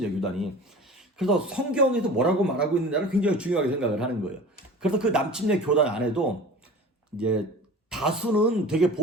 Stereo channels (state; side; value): normal; both; correlation 0.40